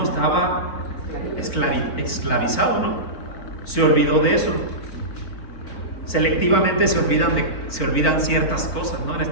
estaba esclavizado, ¿no? Se olvidó de eso. Selectivamente se olvidan ciertas cosas, ¿no? En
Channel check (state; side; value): late; right; 4.5 ms